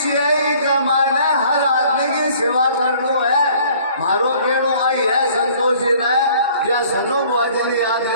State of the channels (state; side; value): inverted; both; correlation -0.55